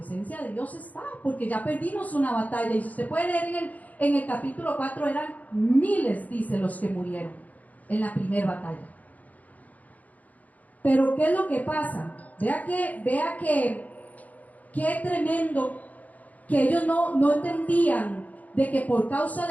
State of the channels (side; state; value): right; late; 0.076 ms